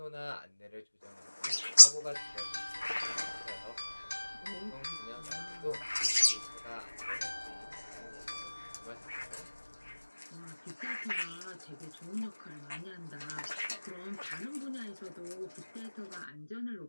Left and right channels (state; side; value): inverted; both; correlation -1.00